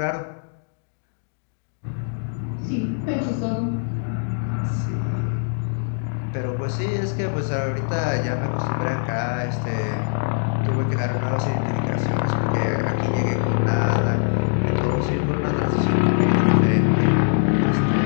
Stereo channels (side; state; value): right; silent; digital silence